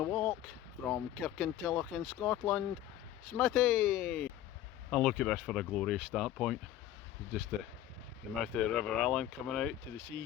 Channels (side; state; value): right; quieter; 12.5 dB